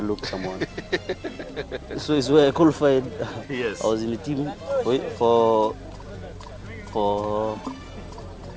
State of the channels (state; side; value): identical; both; correlation 1.00